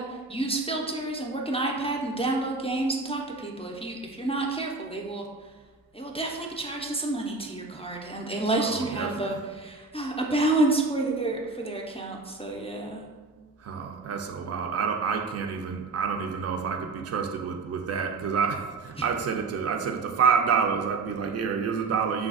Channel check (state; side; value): quieter; left; 3.8 dB